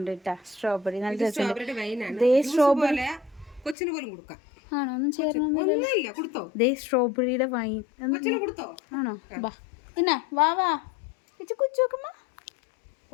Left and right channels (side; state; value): right; drops out; at 3.8 s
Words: കേട്ടാ. സ്ട്രോബെറി നല്ല രസമുണ്ട്. സ്ട്രോബെറി ആണോ? ഒന്നും ചേർന്നേ. സ്ട്രോബെറിയുടെ വൈൻ ആണോ? ബാ എന്നാ വാ വാ കുച്ചു നോക്കുമ്പോ